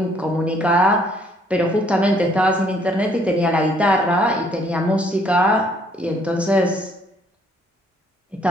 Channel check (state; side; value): normal; both; correlation 0.64